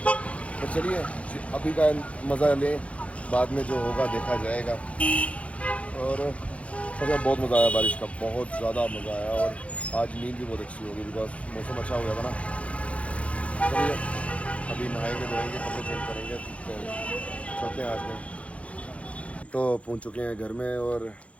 तो चलिए अभी का मज़ा लें, बाद में जो होगा देखा जाएगा। और सच में बहुत मज़ा आया बारिश का, बहुत ज़्यादा मज़ा आया। और आज नींद भी बहुत अच्छी होगी, बिकॉज मौसम अच्छा हो गया था ना। चलिए अभी नहाएंगे धोएंगे, कपड़े चेंज करेंगे, चलते हैं आज में। तो पहुंच चुके हैं घर में, और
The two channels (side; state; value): right; late; 0.064 ms